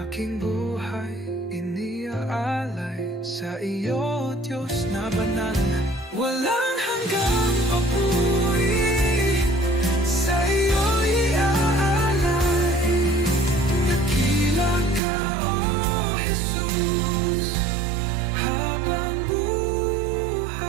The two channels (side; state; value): left; drops out; at 15.0 s